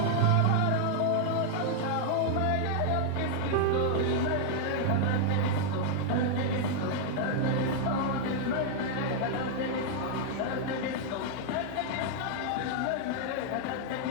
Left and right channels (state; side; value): different; both; correlation 0.00